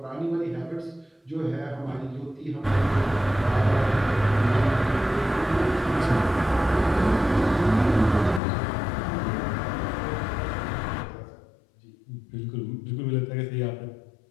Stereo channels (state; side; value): drops out; right; at 8.4 s